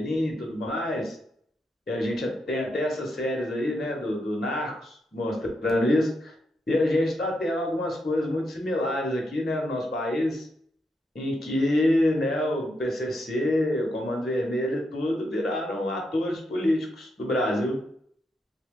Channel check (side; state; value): both; normal; correlation 0.82